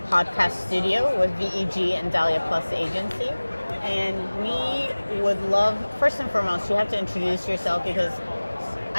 studio with VEG and Dahlia+Agency. And we would love, first and foremost, you have to introduce yourself because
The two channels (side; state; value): both; inverted; correlation -1.00